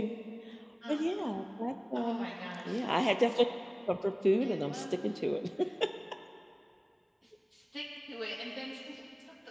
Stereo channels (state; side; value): identical; both; correlation 1.00